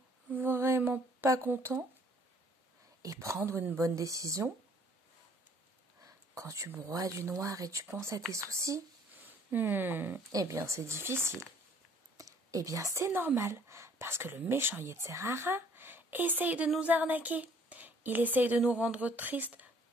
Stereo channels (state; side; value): normal; both; correlation 0.59